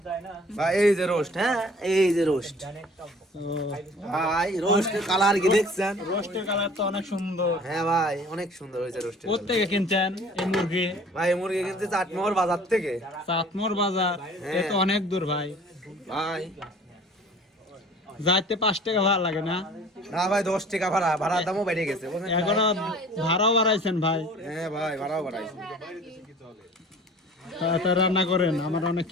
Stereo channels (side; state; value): both; normal; correlation 0.48